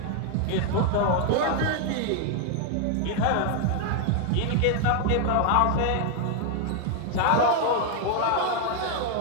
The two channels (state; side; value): different; both; correlation 0.00